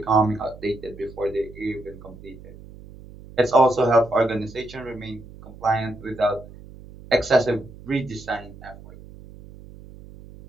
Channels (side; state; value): right; noise; hum, 18 dB below the sound